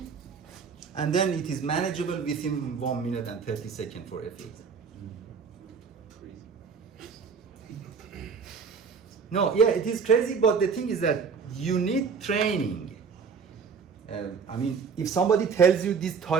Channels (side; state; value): left; quieter; 5.9 dB